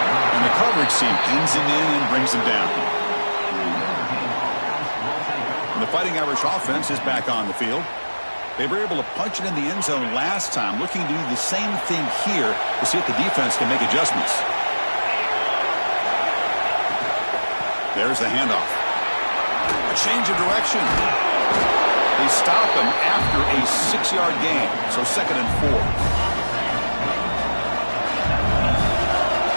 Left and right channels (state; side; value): inverted; both; correlation -1.00